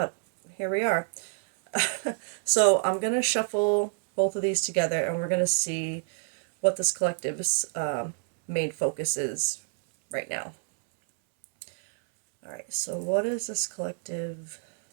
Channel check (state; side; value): silent; left; 60 dB below the other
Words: here we are. So I'm going to shuffle both of these together and we're going to see what this collective's main focus is right now. All right, so what is this collective?